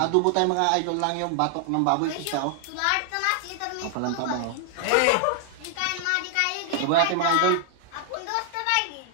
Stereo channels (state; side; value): different; both; correlation 0.00